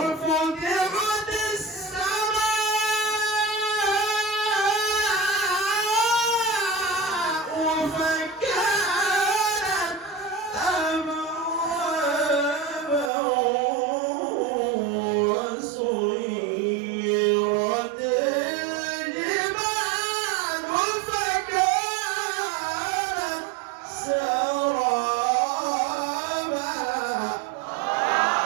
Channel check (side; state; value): left; drops out; at 13.1 s